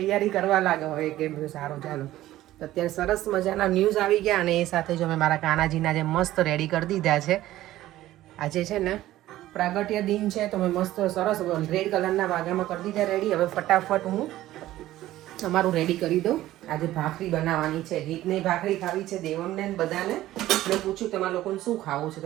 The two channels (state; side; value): quieter; left; 14.9 dB